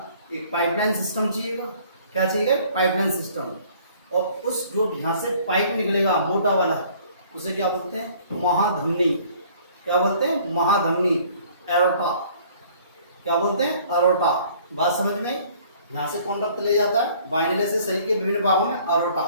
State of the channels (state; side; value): inverted; both; correlation -0.55